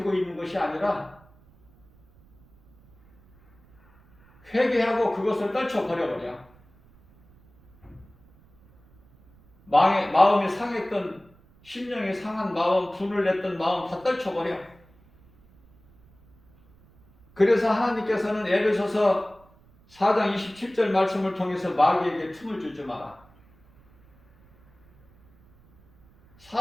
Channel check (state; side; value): noise; right; rumble, 29 dB below the sound